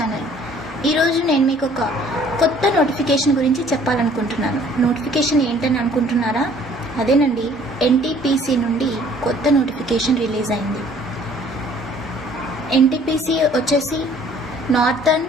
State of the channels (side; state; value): both; normal; correlation 0.56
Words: ఈరోజు నేను మీకు ఒక కొత్త నోటిఫికేషన్ గురించి చెప్పాలనుకుంటున్నాను. నోటిఫికేషన్ ఏంటని అనుకుంటున్నారా? అదేనండి, ఎన్టీపీసీ నుండి కొత్త నోటిఫికేషన్ రిలీజ్ అయింది. ఎన్టీపీసీ వచ్చేసి northern